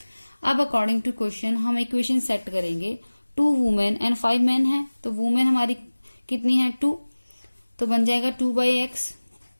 अब अकॉर्डिंग टू क्वेश्चन हम इक्वेशन सेट करेंगे। 2 वुमेन एंड 5 मैन है, तो वुमेन हमारी कितनी है 2, तो बन जाएगा 2/x।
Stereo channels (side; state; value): both; inverted; correlation -1.00